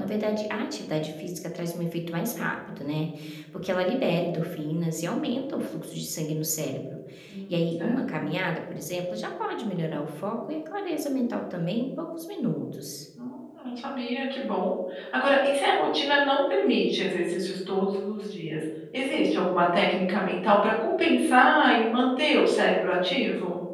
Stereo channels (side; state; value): both; identical; correlation 1.00